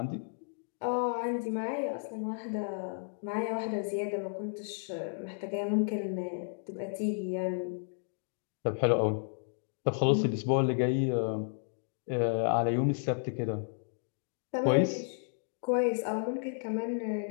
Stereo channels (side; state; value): right; silent; digital silence